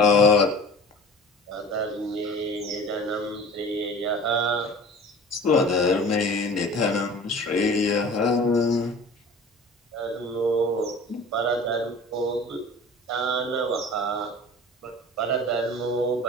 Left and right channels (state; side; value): normal; both; correlation 0.42